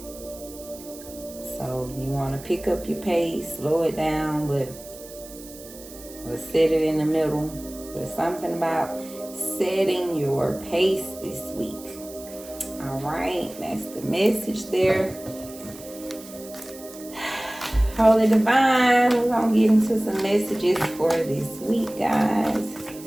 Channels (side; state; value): right; noise; hiss, 17 dB below the sound